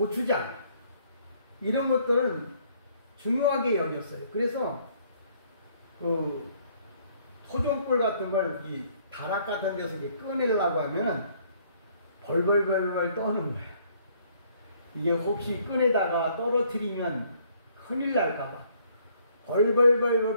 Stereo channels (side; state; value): both; inverted; correlation -0.64